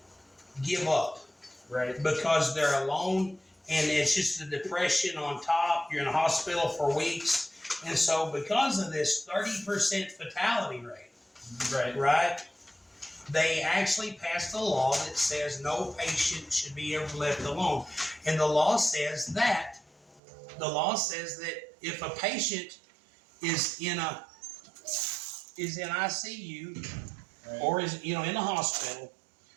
give up Right. because they're alone, and it's just the depression on top. You're in a hospital for weeks. And so because of this 30% fatality rate, Right. right, they actually passed a law that says no patient should be ever left alone. And the law says that if a patient is in ICU Right. or is in the hospital,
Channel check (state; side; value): drops out; left; at 20.2 s